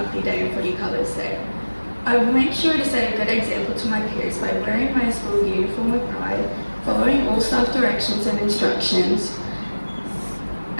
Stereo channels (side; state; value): both; inverted; correlation -1.00